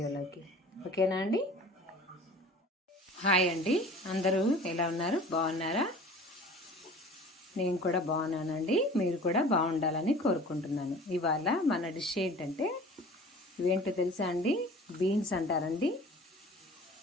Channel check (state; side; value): normal; both; correlation 0.43